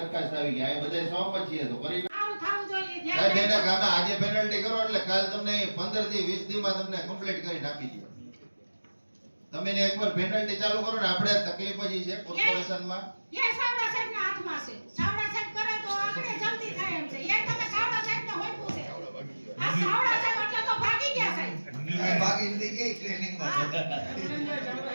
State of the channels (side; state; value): both; inverted; correlation -1.00